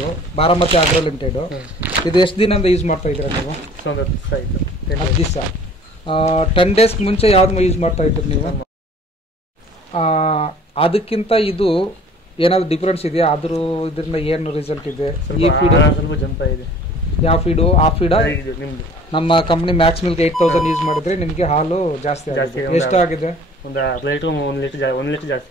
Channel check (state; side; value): normal; both; correlation 0.49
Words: ಬಾರಾಮತಿ ಆಗ್ರೋ ಲಿಮಿಟೆಡ್. ಇದು ಎಷ್ಟು ದಿನದಿಂದ ಯೂಸ್ ಮಾಡ್ತಾ ಇದ್ದೀರಾ ನೀವು? 10 ದಿವಸ. 10 ಡೇಸ್ ಮುಂಚೆ ಯಾವ್ದು ಯೂಸ್ ಮಾಡ್ತಾ ಇದ್ದೀರಿ ನೀವು? ಅದಕ್ಕಿಂತ ಇದು ಏನಾದ್ರು ಡಿಫ್ರೆನ್ಸ್ ಇದೆಯಾ? ಇದರಿಂದ ಏನು ರಿಸಲ್ಟ್ ಇದೆ? ಈ ಫೀಡ್ ಯಾವ ಫೀಡು? ಆ ಫೀಡ ನಮ್ಮ ಕಂಪ್ನಿ ಮ್ಯಾಕ್ಸ್ ಮಿಲ್ಕ್ 8000 ಯೂಸ್ ಮಾಡಿದ್ರೆ ನಿಮಗೆ ಹಾಲು ಜಾಸ್ತಿ ಆಗಿದೆ. ಎಷ್ಟು ಆಗಿದೆ? 1 ಲೀಟರ್